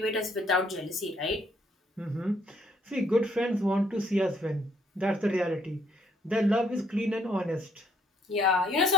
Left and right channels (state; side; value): normal; both; correlation 0.67